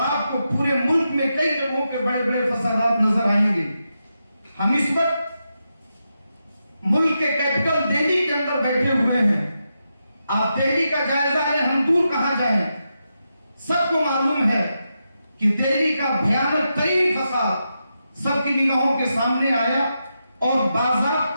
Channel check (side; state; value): both; inverted; correlation -0.86